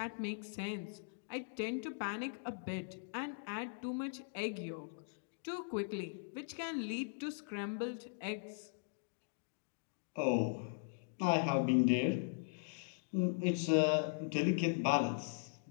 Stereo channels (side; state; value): right; silent; digital silence